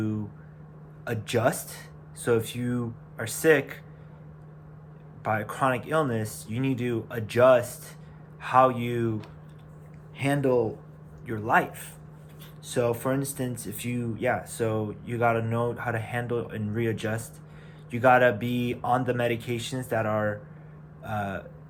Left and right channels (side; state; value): both; identical; correlation 1.00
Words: adjust. So, if you are sick, by a chronic illness, you need to adjust how you handle your life. So, for instance, so you gotta know how to handle and readjust. You gotta be on the medications that are uh,